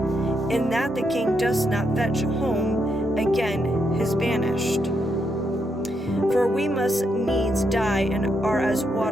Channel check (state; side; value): normal; both; correlation 0.80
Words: in that the king does not fetch home again his banished. For we must needs die, and are as